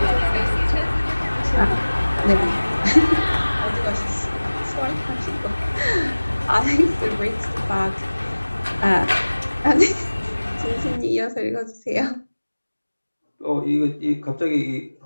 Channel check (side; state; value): both; inverted; correlation -1.00